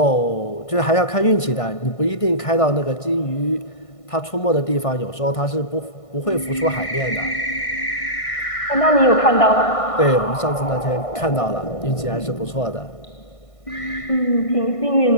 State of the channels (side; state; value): right; late; 1.6 ms